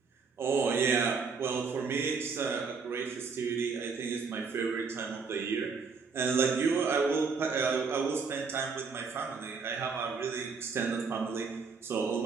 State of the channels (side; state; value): left; quieter; 5.1 dB